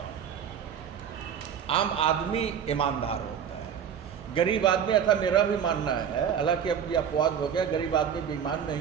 हूँ। आम आदमी ईमानदार होता है, गरीब आदमी, ऐसा मेरा भी मानना है, हालांकि अब ये अपवाद हो गया, गरीब आदमी बेईमान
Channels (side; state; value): left; quieter; 8.2 dB